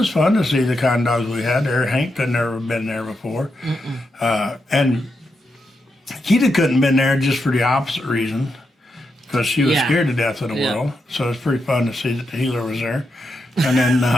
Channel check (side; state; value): both; normal; correlation 0.84